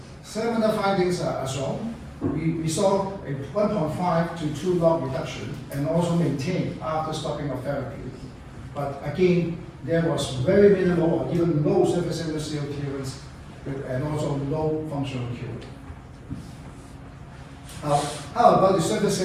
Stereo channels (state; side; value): identical; both; correlation 1.00